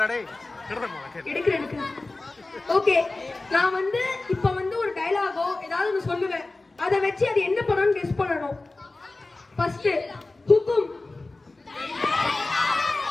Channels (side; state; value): right; quieter; 3.2 dB